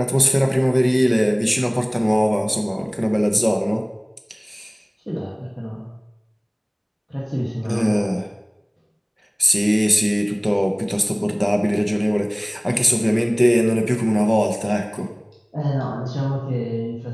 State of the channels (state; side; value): identical; both; correlation 1.00